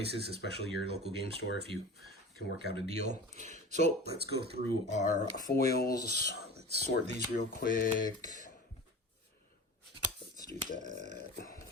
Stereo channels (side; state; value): both; normal; correlation 0.35